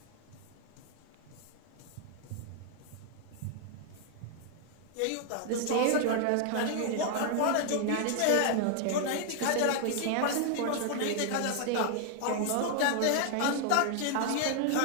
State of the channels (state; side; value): different; both; correlation 0.00